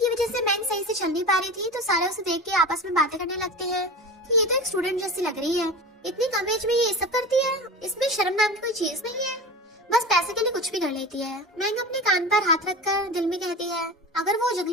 वजह से मैंग सही से चल नहीं पा रही थी तो सारे उसे देख के आपस में बातें करने लगते हैं कि ये तो एक स्टूडेंट जैसी लग रही है, इतनी कम एज में ये सब करती है, इसमें शर्म नाम की कोई चीज नहीं है, बस पैसे के लिए कुछ भी कर लेती है। मैंग अपने कान पर हाथ रखकर दिल में कहती है अगर वो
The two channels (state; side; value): normal; both; correlation 0.31